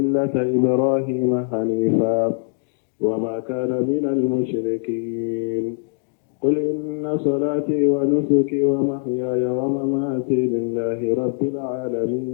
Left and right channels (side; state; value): right; silent; digital silence